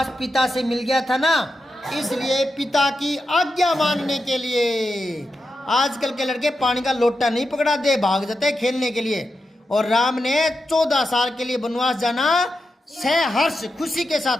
पिता से मिल गया था ना, इसलिए पिता की आज्ञा मानने के लिए आजकल के लड़के पानी का लोटा नहीं पकड़ा दे, भाग जाते खेलने के लिए। और राम ने 14 साल के लिए वनवास जाना सहर्ष खुशी के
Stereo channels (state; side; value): normal; both; correlation 0.88